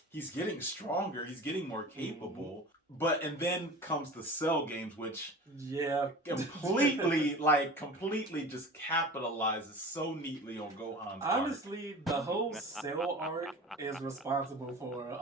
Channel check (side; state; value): both; normal; correlation 0.37